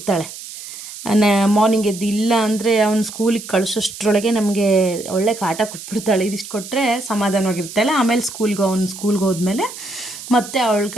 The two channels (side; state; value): right; noise; hiss, 12 dB below the sound